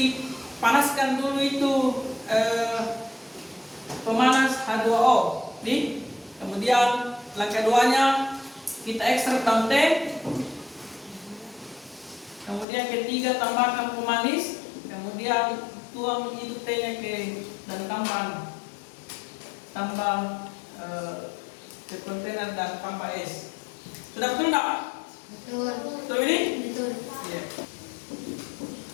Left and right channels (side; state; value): right; drops out; at 12.7 s